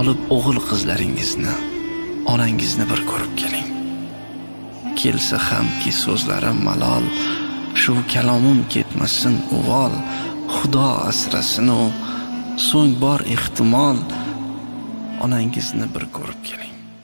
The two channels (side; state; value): both; inverted; correlation -1.00